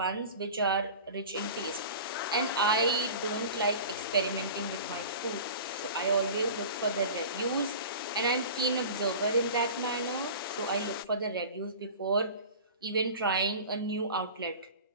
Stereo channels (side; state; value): both; inverted; correlation -0.37